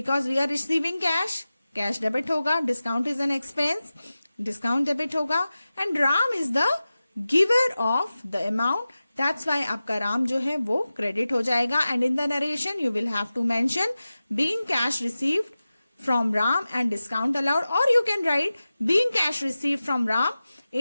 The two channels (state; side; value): inverted; both; correlation -0.95